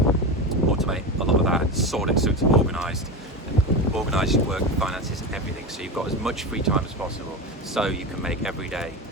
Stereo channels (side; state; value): both; normal; correlation 0.22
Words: a lot of that and sort it so it's organised, and organise your work, finances, everything, so you've got as much free time as possible, so you can make every day